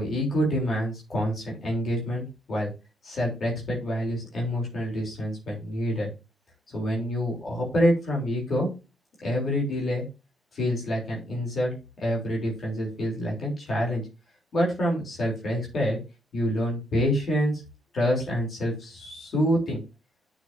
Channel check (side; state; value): both; normal; correlation 0.74